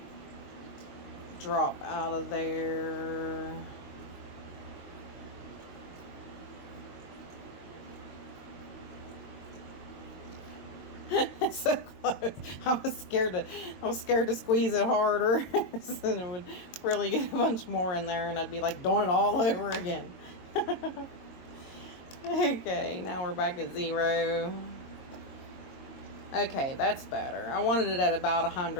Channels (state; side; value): late; right; 22 ms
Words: drop out of there. So close. I was scared to squeeze it harder. And it would really get a bunch more in there and I'd be like doing it all over again. Okay, now we're back at 0. Okay, that's better. I wanted it at about